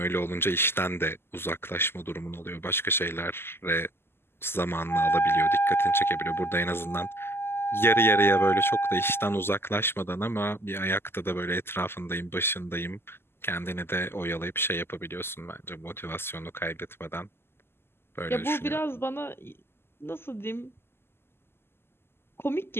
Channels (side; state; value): right; late; 0.12 ms